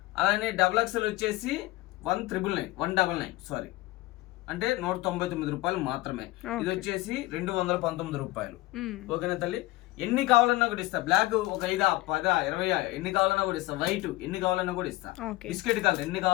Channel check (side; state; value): right; quieter; 19.3 dB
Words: అలానే డబుల్ ఎక్సెల్ వచ్చేసి 199 సారీ, అంటే 199 రూపాయలు మాత్రమే. ఇది వచ్చేసి 219 రూపాయలు. ఓకేనా తల్లి? ఎన్ని కావాలన్నా కూడా ఇస్తా. బ్లాక్ ఒక 5, 10, 20 ఎన్ని కావాలన్నా కూడా ఇస్తా. వైట్ ఎన్ని కావాలన్నా కూడా ఇస్తా. బిస్కెట్ కలర్ ఎన్ని